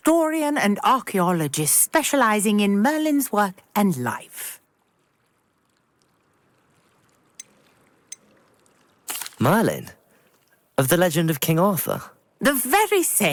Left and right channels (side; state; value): both; identical; correlation 1.00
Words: and archaeologist specialising in Merlin's work and life. Merlin? Of the legend of King Arthur? The very